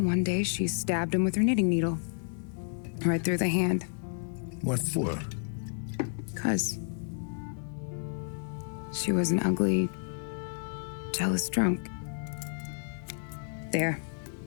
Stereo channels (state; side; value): silent; right; digital silence